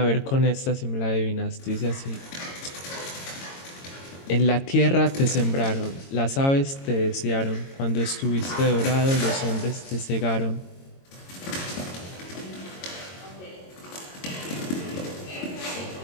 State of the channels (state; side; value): late; right; 22 ms